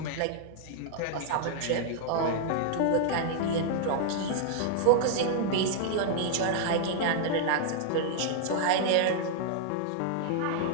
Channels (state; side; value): different; both; correlation -0.01